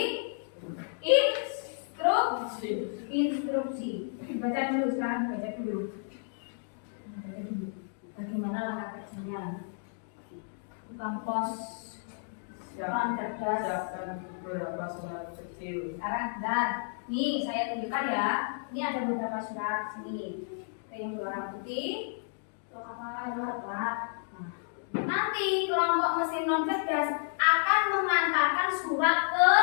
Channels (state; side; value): silent; right; digital silence